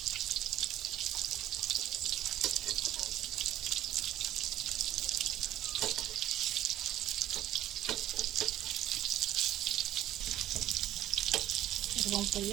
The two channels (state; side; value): quieter; left; 13.3 dB